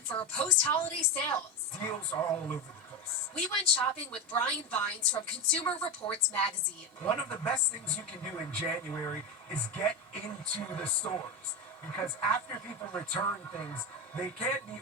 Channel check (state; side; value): normal; both; correlation 0.16